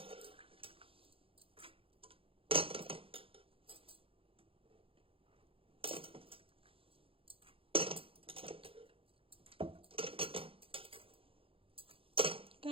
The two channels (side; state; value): left; late; 0.27 ms